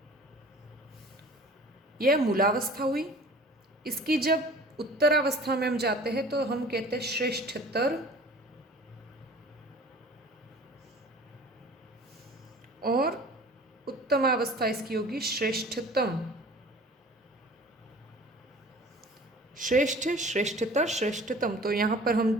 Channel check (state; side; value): normal; both; correlation 0.45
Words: यह मूलावस्था हुई। इसकी जब उत्तरावस्था में हम जाते हैं तो हम कहते हैं श्रेष्ठतर, और उत्तमावस्था इसकी होगी श्रेष्ठतम। श्रेष्ठ, श्रेष्ठतर, श्रेष्ठतम। तो यहाँ पर हम